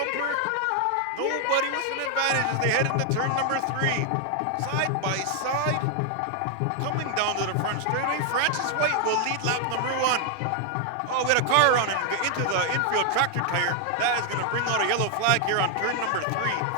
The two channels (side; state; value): both; different; correlation 0.00